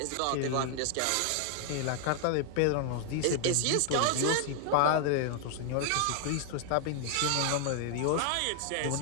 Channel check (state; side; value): different; both; correlation 0.00